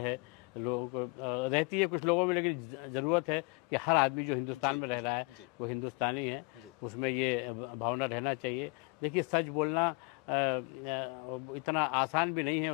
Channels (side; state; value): right; quieter; 29.3 dB